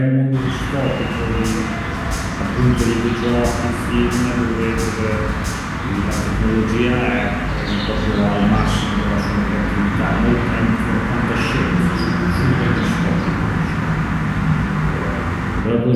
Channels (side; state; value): both; identical; correlation 1.00